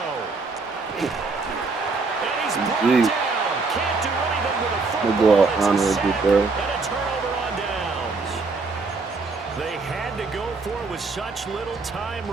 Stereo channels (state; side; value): quieter; left; 4.1 dB